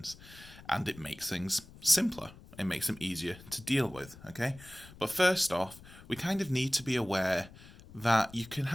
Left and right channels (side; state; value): left; noise; rumble, 19 dB below the sound